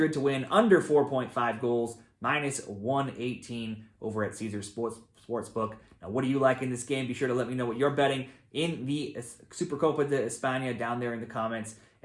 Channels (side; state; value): both; identical; correlation 1.00